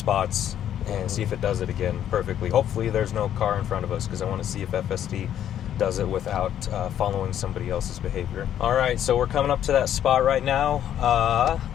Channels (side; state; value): right; quieter; 10.5 dB